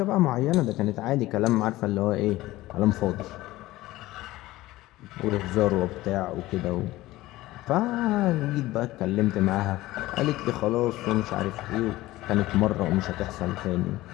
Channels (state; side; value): quieter; right; 17.5 dB